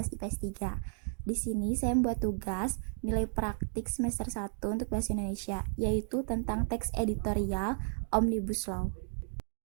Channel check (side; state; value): left; silent; digital silence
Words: IPS 3. Di sini saya membuat tugas nilai praktik semester 1 untuk bahasa Indonesia, yaitu tentang teks editorial Omnibus Law.